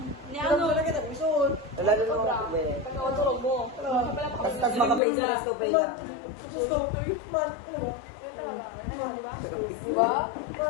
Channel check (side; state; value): right; drops out; at 5.0 s